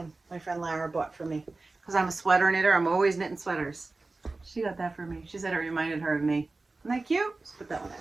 my friend Lara bought for me because I'm a sweater knitter. I'm always knitting sweaters. She got that for me. She said it reminded her of me. Isn't that cute? Just put that one in.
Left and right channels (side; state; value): left; quieter; 3.4 dB